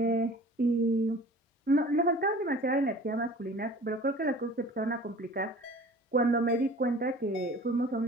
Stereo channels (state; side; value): normal; both; correlation 0.44